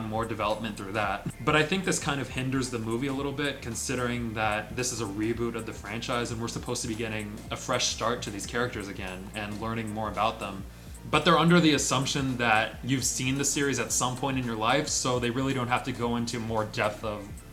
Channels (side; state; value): both; identical; correlation 1.00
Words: more development through that. But I think this kind of hinders the movie a little bit, considering that this is a reboot of the franchise, and we're supposed to be getting a fresh start to these characters again, and learning more about them. But they're under the assumption that you've seen the series at some point in your life, so they really don't have to go into more depth of